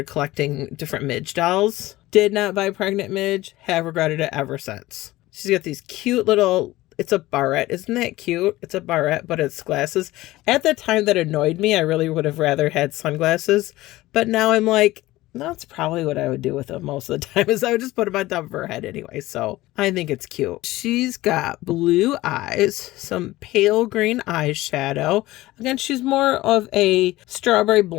collecting different Midge dolls. Did not buy pregnant Midge. Have regretted it ever since. She's got these cute little it's a barrette. Isn't that cute? It's a barrette, but it's glasses. At the time that annoyed me, I really would have rather had sunglasses. But now I'm like, that's probably what I would do with them most of the time, is I would just put them on top of her head anyway. So I think it's cute. She's got blue eyes, some pale green eyeshadow. Again, she's more of a strawberry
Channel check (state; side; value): quieter; right; 17.7 dB